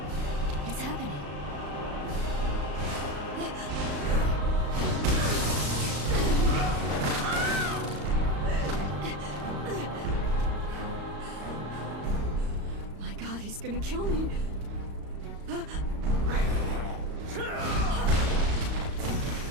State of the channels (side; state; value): left; late; 35 ms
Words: It's happening. My God, he's gonna kill me.